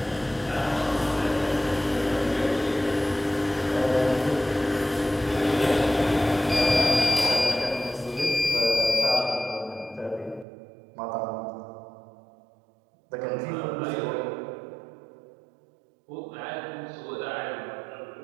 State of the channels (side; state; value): left; drops out; at 10.5 s